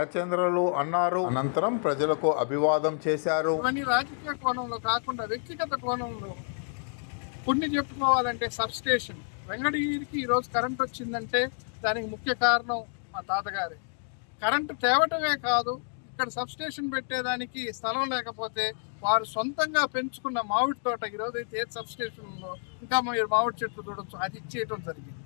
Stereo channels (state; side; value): silent; right; 59 dB below the other